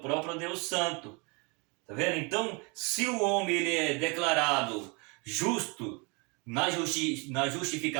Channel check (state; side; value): quieter; left; 30.4 dB